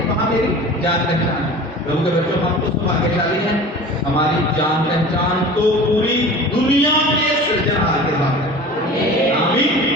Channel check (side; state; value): both; normal; correlation 0.39